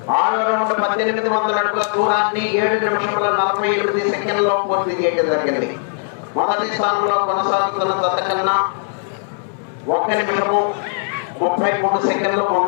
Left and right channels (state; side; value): silent; right; 61 dB below the other